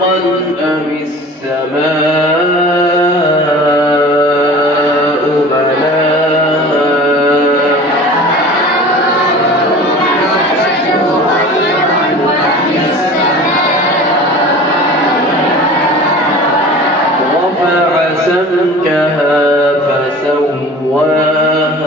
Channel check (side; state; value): both; normal; correlation 0.40